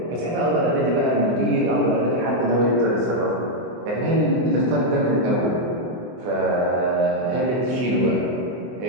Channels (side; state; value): left; late; 24 ms